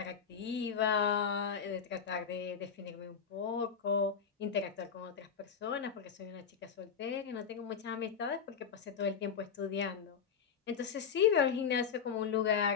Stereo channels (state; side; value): quieter; right; 6.8 dB